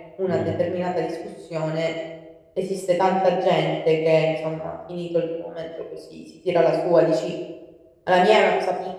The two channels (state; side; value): identical; both; correlation 1.00